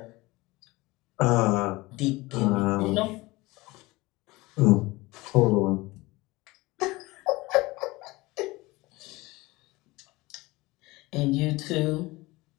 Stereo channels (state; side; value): quieter; right; 21.4 dB